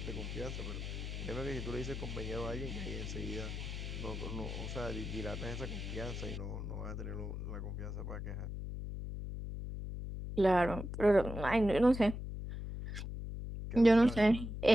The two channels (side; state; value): left; noise; hum, 6 dB below the sound